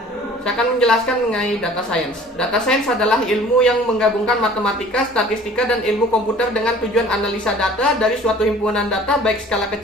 Saya akan menjelaskan mengenai data science. Data science adalah ilmu yang menggabungkan matematika, statistika, dan ilmu komputer dengan tujuan analisa data dari suatu himpunan data baik skala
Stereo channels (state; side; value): normal; both; correlation 0.49